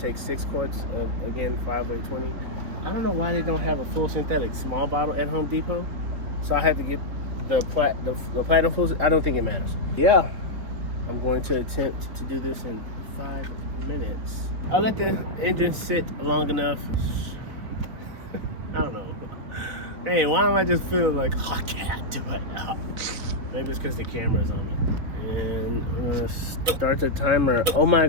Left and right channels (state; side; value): late; left; 4.0 ms